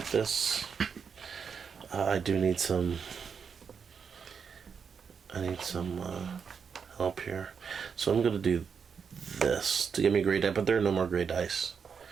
this? I do need some... I need some help here. So I'm going to do this to give me gray die, but there are no more gray dice.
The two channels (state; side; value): quieter; left; 6.4 dB